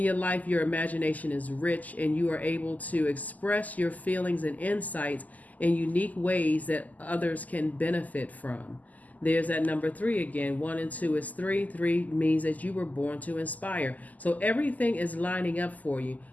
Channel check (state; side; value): late; right; 0.079 ms